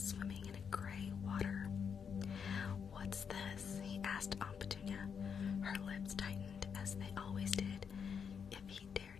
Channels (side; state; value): right; quieter; 6.8 dB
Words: swimming in a gray water. "What's this?" he asked Aunt Petunia. Her lips tightened, as they always did, if he